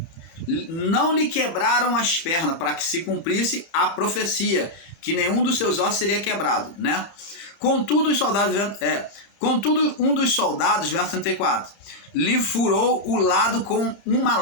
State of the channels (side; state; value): right; late; 31 ms